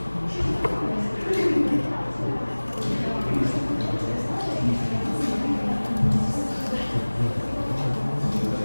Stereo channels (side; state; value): both; inverted; correlation -1.00